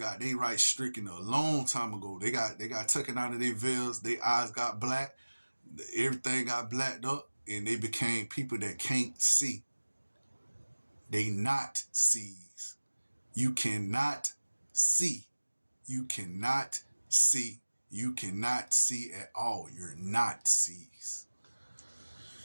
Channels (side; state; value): both; inverted; correlation -1.00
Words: they rights stricken a long time ago. They got taken out of their veils. Their eyes got black. Everything got blacked up, and they became people that can't see. They not sees. You cannot see. You cannot see. You cannot see at all. You're not sees.